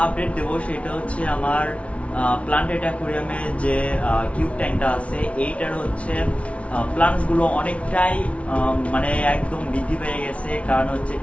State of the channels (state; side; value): late; right; 0.063 ms